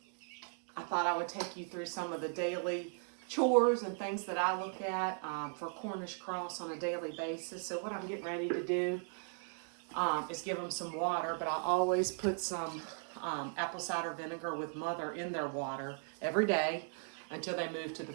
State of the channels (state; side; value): silent; left; 53 dB below the other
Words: I thought I would take you through some of the daily chores and things that I look at for Cornish Cross on a daily basis. So what I'm getting ready to do is give them some water, but I always put some apple cider vinegar with mother in their water every day until they move to the